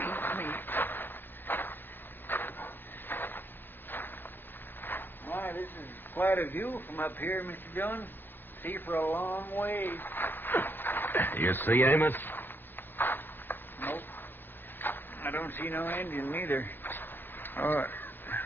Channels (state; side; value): late; right; 0.094 ms